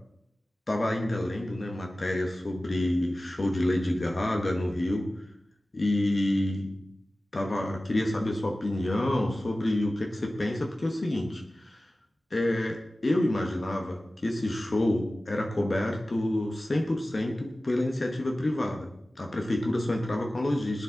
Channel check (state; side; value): normal; both; correlation 0.96